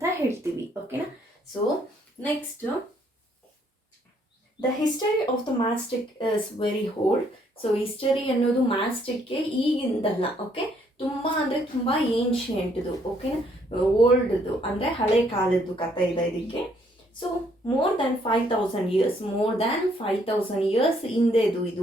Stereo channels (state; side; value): normal; both; correlation 0.68